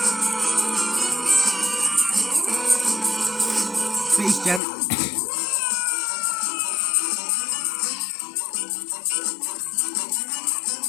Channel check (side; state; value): right; drops out; at 4.6 s